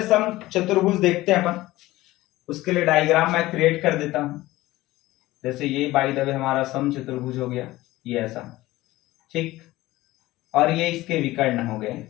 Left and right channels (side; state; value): right; quieter; 17.7 dB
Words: समचतुर्भुज देखते हैं अपन। उसके लिए डायग्राम मैं क्रिएट कर देता हूं। जैसे ये बाय द वे हमारा समचतुर्भुज हो गया, ये ऐसा, ठीक, और ये इसके विकर्ण हो गए।